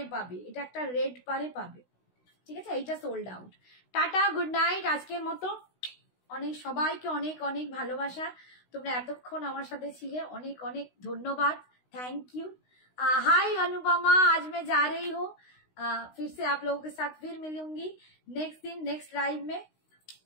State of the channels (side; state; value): right; late; 16 ms